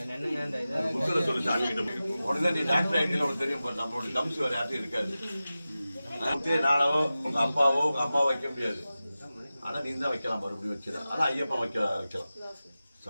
உடனே நீ டாக்டர் ஐடியில் உனக்கு தெரியும். நம்மளுடைய தம்சி வேற யார்ட்டும் இருக்காது. நானோ உங்க அப்பாவோ உங்க அம்மாவோ வைக்க முடியாது. ஆனால் நீ தான் வைக்கலாம், மறுபடியும் வச்சிடலாம். ஆனால் ஐயப்பன் வைக்கலாம்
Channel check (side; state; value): both; inverted; correlation -0.95